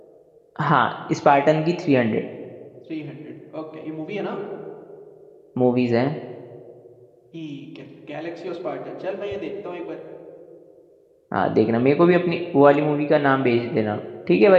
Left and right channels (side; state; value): both; identical; correlation 1.00